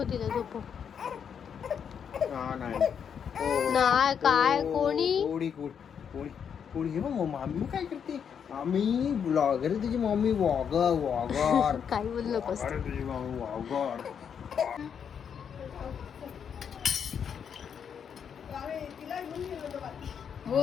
तिला झोपो. हा नाही. नाही काय कोणी कोणी कोणी कोणी हे बघ मम्मी काय करते. आम्ही ब्लॉगर आहे तुझी मम्मी. वॉगर काही बोलू नकोस. अरे तुझी मम्मी वॉगर.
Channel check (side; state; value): right; quieter; 7.5 dB